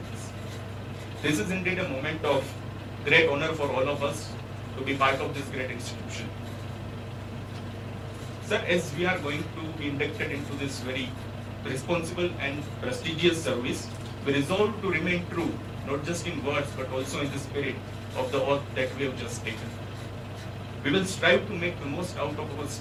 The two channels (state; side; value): identical; both; correlation 1.00